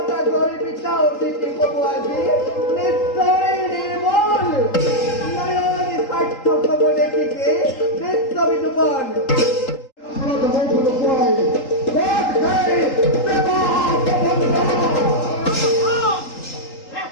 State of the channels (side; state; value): right; late; 3.8 ms